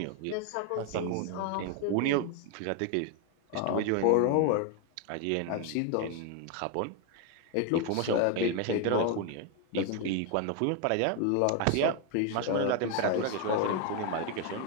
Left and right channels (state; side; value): different; both; correlation 0.01